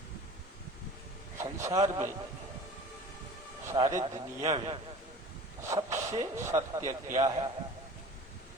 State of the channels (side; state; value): both; normal; correlation 0.42